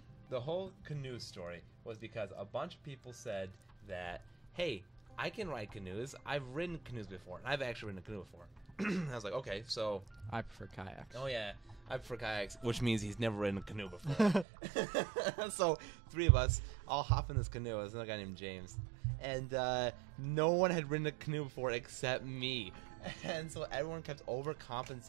The whole canoe story was because a bunch of people said that, hey, I can ride canoes. I've ridden canoes before, and I've actually ridden a canoe before. I was like, okay, so I prefer kayaks. oh yeah, I prefer kayaks, which means he's never ridden a canoe before. So 3 of us all hop in this canoe. There's another guy named James, and no one had ridden a canoe before except me. And so everyone kept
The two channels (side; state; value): left; drops out; at 14.5 s